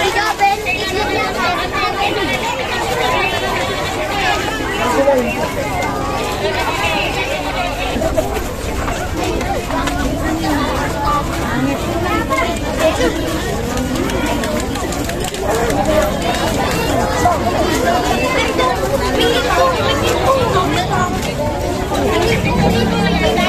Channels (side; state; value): both; identical; correlation 1.00